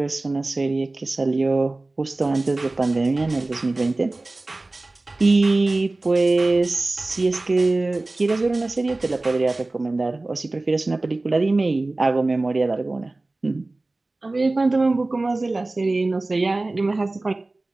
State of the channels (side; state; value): left; quieter; 3.0 dB